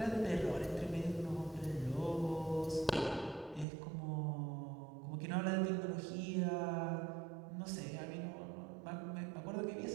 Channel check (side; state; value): left; drops out; at 3.7 s